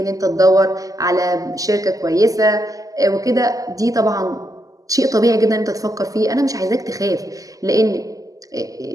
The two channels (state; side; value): late; left; 0.17 ms